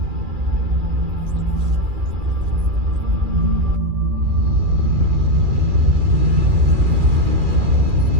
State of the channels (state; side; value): late; left; 2.4 ms